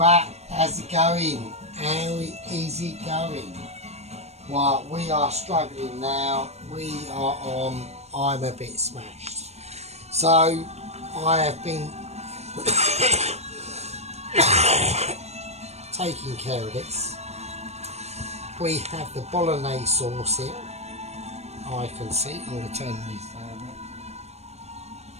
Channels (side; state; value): left; late; 0.31 ms